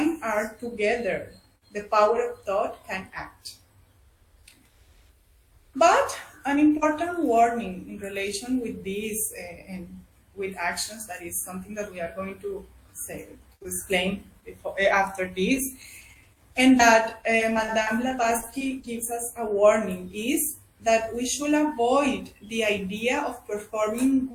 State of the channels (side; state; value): both; identical; correlation 1.00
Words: are together, the power of thought can act. But an important warning in relation with this and with actions, that is something that we are going to explain after this, and that Madame Blavatsky gives us a warning, is that we should avoid the idea of performing